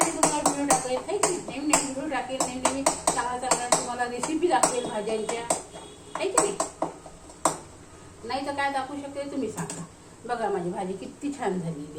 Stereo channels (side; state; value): both; identical; correlation 1.00